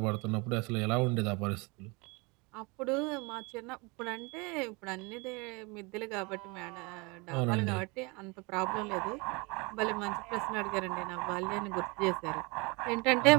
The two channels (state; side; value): quieter; left; 28.0 dB